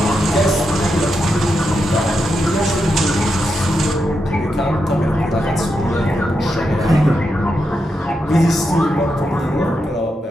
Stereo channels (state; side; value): normal; both; correlation 0.85